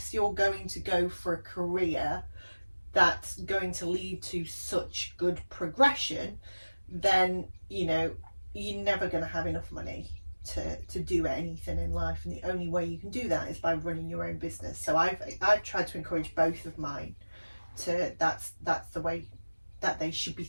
you're going to go for a career that's going to lead to such good progression, then, you know, you're never going to have enough money to do anything in life. And the only way you can do that is by running your own business. So I've tried to encourage both of mine to, that's the way that they should be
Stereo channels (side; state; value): both; inverted; correlation -1.00